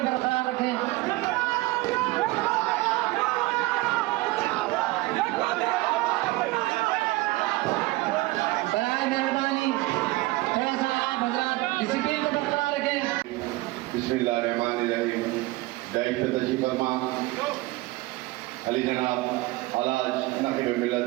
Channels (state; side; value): quieter; left; 20.4 dB